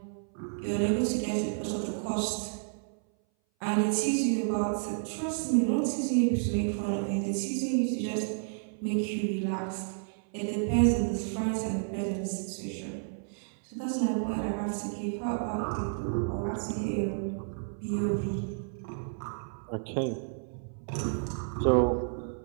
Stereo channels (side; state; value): left; silent; 57 dB below the other